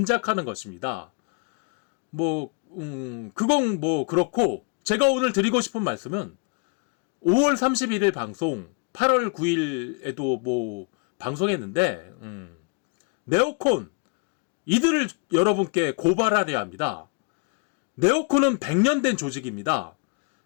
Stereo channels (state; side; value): quieter; right; 37.2 dB